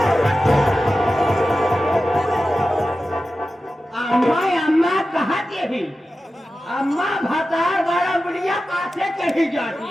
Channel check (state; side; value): normal; both; correlation 0.93